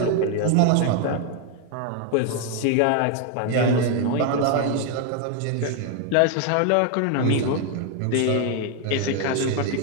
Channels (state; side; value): different; both; correlation 0.01